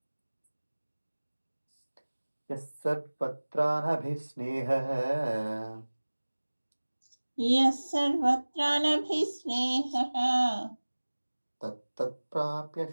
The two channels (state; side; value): inverted; both; correlation -1.00